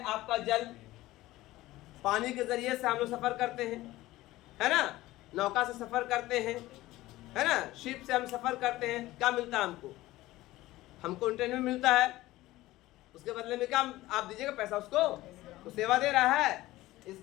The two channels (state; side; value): quieter; right; 17.3 dB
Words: आपका जल, पानी के जरिए से हम लोग सफर करते हैं, है ना, नौका से सफर करते हैं, है ना, शिप से हम सफर करते हैं। क्या मिलता है हमको इंटरनेट में मिलता है, उसके बदले में क्या आप दीजिएगा पैसा उसको, तो सेवा दे रहा है।